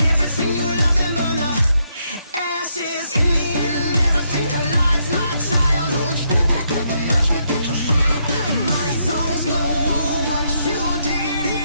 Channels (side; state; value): both; inverted; correlation -0.76